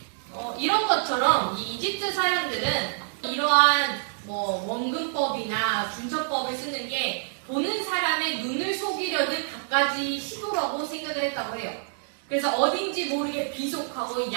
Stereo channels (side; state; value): left; silent; digital silence